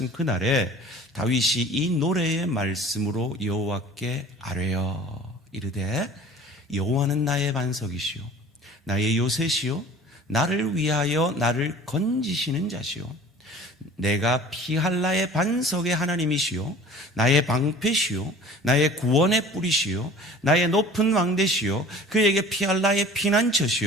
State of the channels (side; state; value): both; normal; correlation 0.45